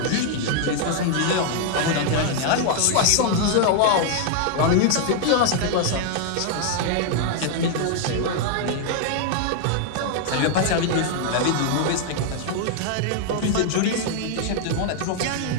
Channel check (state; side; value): different; both; correlation 0.00